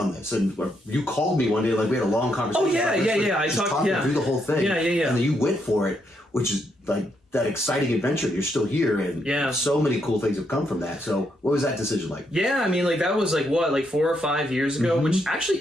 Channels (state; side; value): normal; both; correlation 0.77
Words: this. And you called me one day, like we had a long conversation. I talked through the whole thing. And then you went for it, which is like that exciting adventure. You're still here, and so many cool things have come from that. So what was that decision like? I mean, like that was like what, like 4 or 5 years ago, which actually